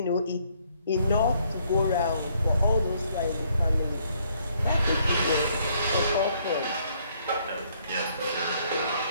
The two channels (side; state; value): both; inverted; correlation -0.68